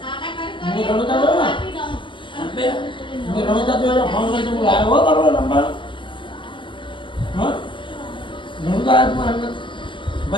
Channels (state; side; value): late; right; 0.24 ms